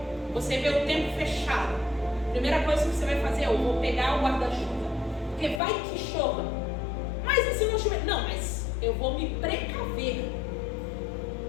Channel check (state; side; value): drops out; right; at 5.6 s